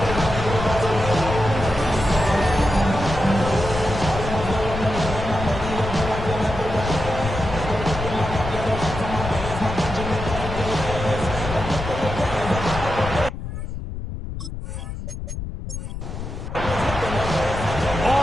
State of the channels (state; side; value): noise; left; rumble, 7 dB below the sound